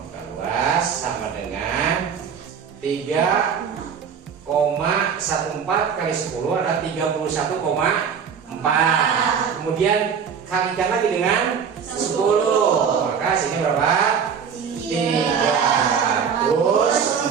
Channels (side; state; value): left; quieter; 6.9 dB